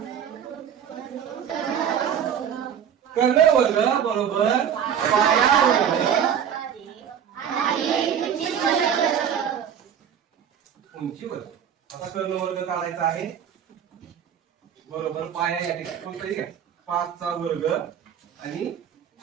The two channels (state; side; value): quieter; left; 8.6 dB